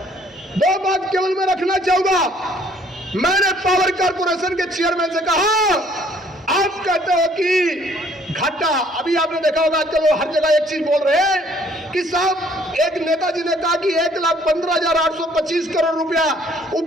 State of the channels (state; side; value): normal; both; correlation 0.61